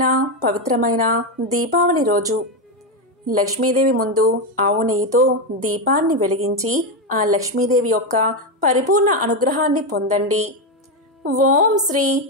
పవిత్రమైన దీపావళి రోజు లక్ష్మీదేవి ముందు ఆవు నెయ్యితో దీపాన్ని వెలిగించి ఆ లక్ష్మీదేవి యొక్క పరిపూర్ణ అనుగ్రహాన్ని పొందండి. ఓం శ్రీ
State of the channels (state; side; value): normal; both; correlation 0.09